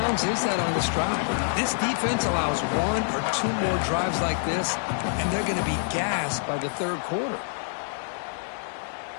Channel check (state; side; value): silent; right; digital silence